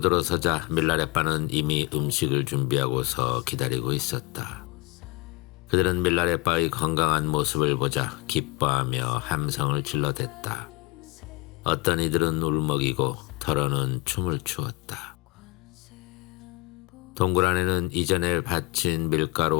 들어서자 밀라레빠는 이미 음식을 준비하고서 기다리고 있었다. 그들은 밀라레빠의 건강한 모습을 보자 기뻐하며 함성을 질러댔다. 어떤 이들은 울먹이고 더러는 춤을 추었다. 동굴 안에는 이전에 바친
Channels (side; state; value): right; quieter; 20.4 dB